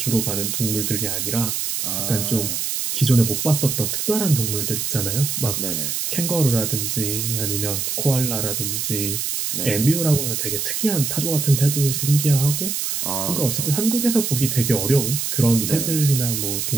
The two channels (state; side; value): noise; right; hiss, 2 dB below the sound